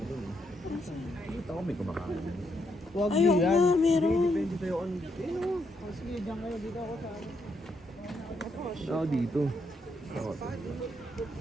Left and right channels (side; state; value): both; normal; correlation 0.78